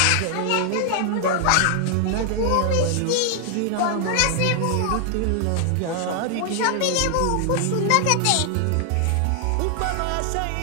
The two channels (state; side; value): different; both; correlation 0.00